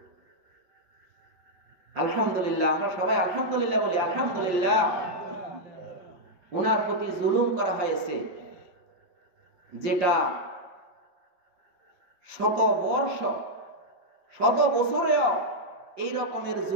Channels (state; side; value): late; left; 5.7 ms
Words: আলহামদুলিল্লাহ, আমরা সবাই আলহামদুলিল্লাহ বলি। আলহামদুলিল্লাহ, ওনার প্রতি জুলুম করা হয়েছে, যেটা শত বছরেও এই রকমের